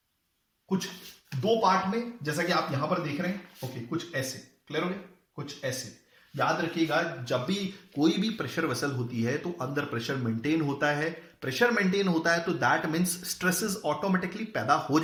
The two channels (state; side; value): identical; both; correlation 1.00